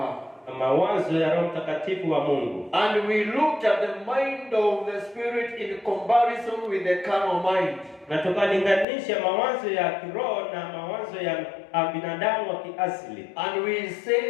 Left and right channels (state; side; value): drops out; right; at 8.8 s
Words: Mawazo ya Roho Mtakatifu wa Mungu. And we looked at the mind of the Spirit in comparison with the carnal mind. Na tukalinganisha mawazo ya kiroho na mawazo ya binadamu wa kiasili. And we